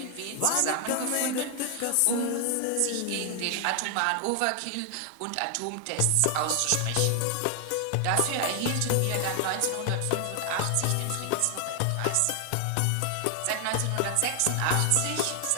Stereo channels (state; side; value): different; both; correlation 0.00